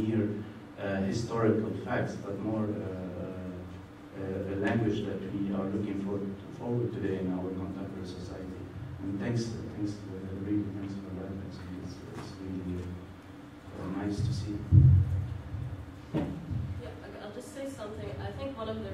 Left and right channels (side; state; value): both; identical; correlation 1.00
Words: historical facts, but more a language that we are looking forward today in our contemporary society. And thanks for that. It's really nice to see. Yeah, I'll just say something. I think one of the